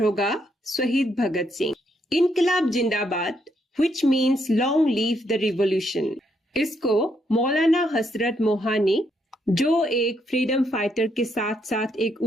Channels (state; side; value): normal; both; correlation 0.75